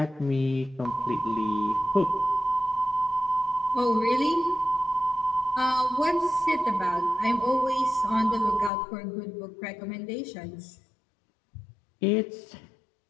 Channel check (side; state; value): right; drops out; at 8.7 s